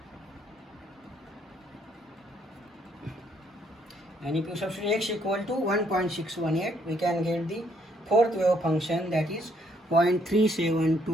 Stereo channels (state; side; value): normal; both; correlation 0.69